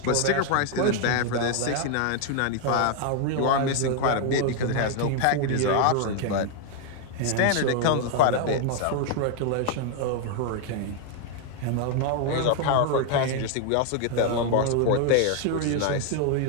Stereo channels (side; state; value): both; different; correlation 0.00